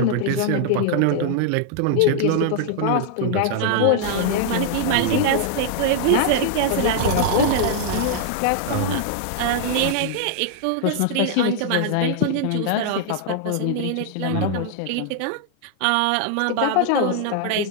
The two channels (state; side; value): different; both; correlation 0.00